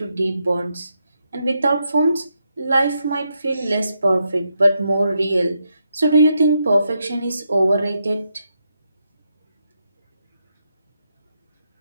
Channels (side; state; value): both; inverted; correlation -0.82